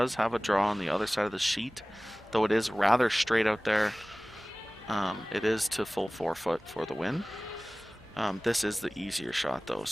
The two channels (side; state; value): both; normal; correlation 0.98